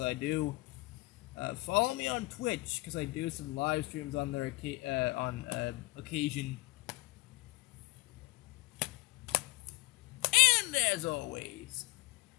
I do. Follow me on Twitch because I do some live streams on there on occasion. And as always,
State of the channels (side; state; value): right; quieter; 23.0 dB